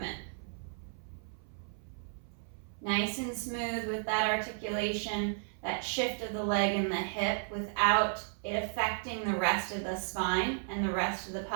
Nice and smooth with that articulation, that shift of the leg and the hip without it affecting the rest of the spine and the rest of the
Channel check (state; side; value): silent; left; 55 dB below the other